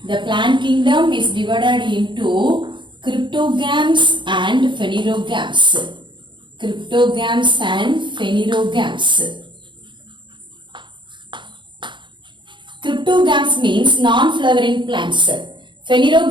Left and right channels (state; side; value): late; left; 0.23 ms